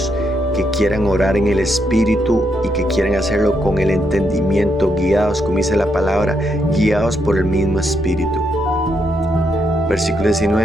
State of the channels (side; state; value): left; noise; rumble, 17 dB below the sound